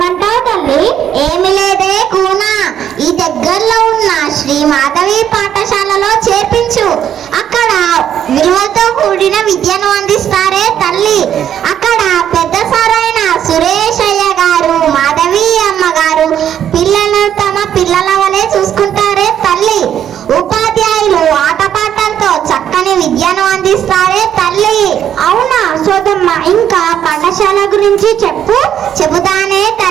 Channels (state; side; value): quieter; left; 9.8 dB